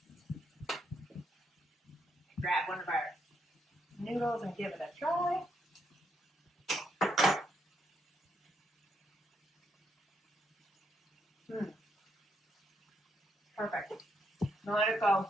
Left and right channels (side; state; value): both; normal; correlation 0.77